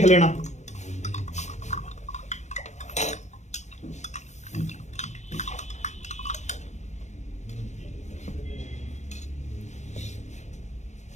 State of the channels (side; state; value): right; late; 0.34 ms